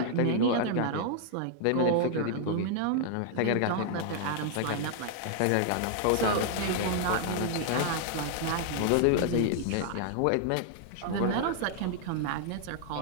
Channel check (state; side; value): different; both; correlation -0.01